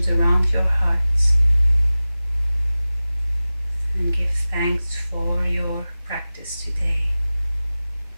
around your heart and give thanks for your practice today.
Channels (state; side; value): inverted; both; correlation -0.97